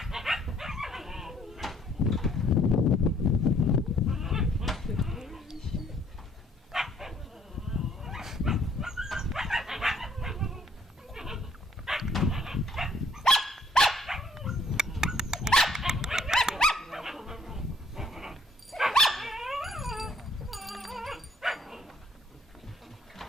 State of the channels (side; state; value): both; normal; correlation 0.63